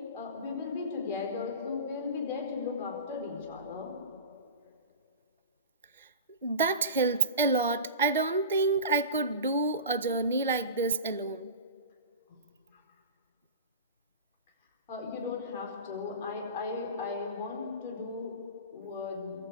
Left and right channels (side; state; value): both; inverted; correlation -0.32